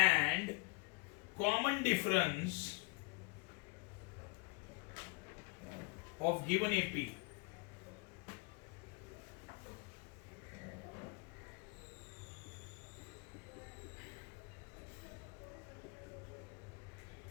common difference of given AP।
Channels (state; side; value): quieter; right; 30.8 dB